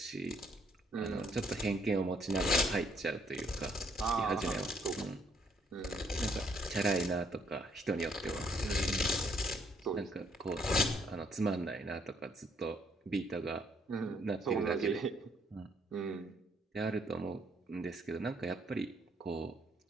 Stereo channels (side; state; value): both; normal; correlation 0.67